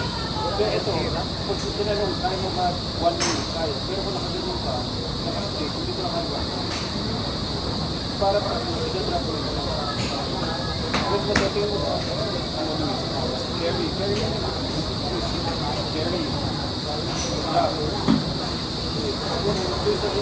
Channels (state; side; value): identical; both; correlation 1.00